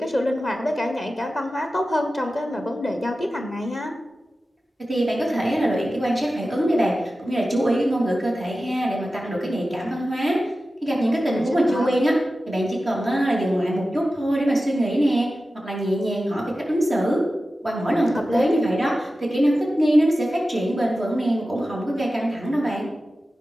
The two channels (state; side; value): normal; both; correlation 0.94